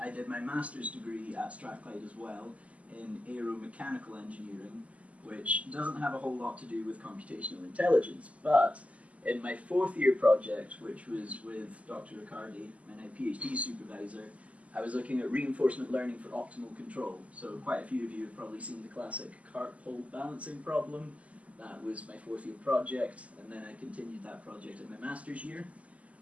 I did my master's degree at Strathclyde as well in aeromechanical engineering, which doesn't have a whole lot to do with computational intelligence, but in my fourth year project, which was with Dr. Riccardi, my now PhD supervisor, I was looking at reinforcement learning for optimal control. So quite a few of you have probably seen the classic cart pole balancing problem. That was my fourth year project, and then I continued that project in my master's year.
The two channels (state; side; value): late; left; 0.068 ms